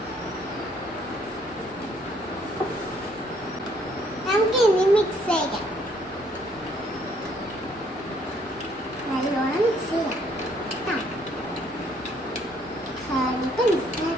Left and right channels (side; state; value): both; normal; correlation 0.65